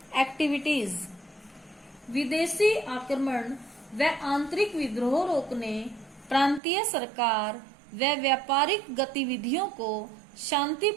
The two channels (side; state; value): left; drops out; at 6.6 s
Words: activities. विदेशी आक्रमण व आंतरिक विद्रोह रोकने, प्रांतीय सरकार व व्यापारिक गतिविधियों को